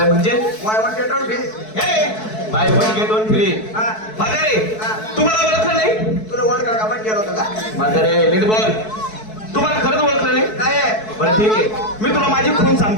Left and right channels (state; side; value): late; right; 4.6 ms